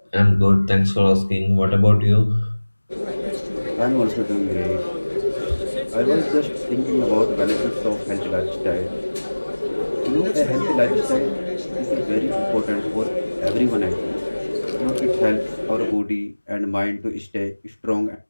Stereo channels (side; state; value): both; inverted; correlation -1.00